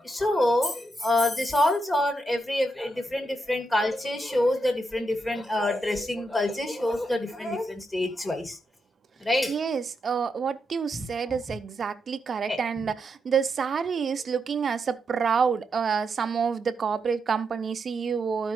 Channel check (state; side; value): normal; both; correlation 0.83